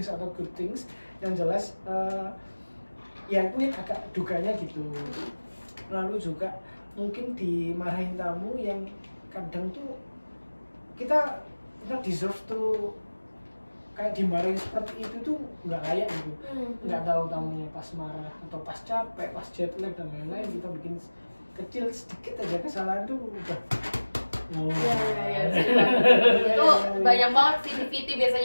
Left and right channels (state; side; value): inverted; both; correlation -1.00